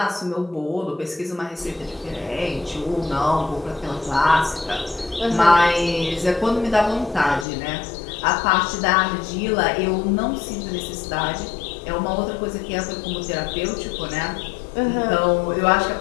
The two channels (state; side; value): drops out; right; at 7.5 s